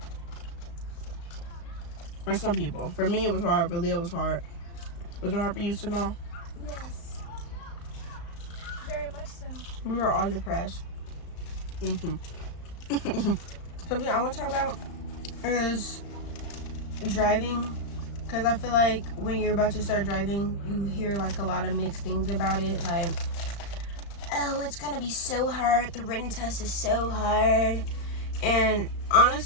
For some people. For me, it was hard. For Leah, it was hard. Was it hard for you to know? Yes. Very much so. We were all depressed. Something I want to talk about is driving, because I feel like when you're about to start driving, you hear like a lot of mixed things about it. Like, oh, it's gonna be so hard. The written test is so hard. And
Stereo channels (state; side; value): late; right; 35 ms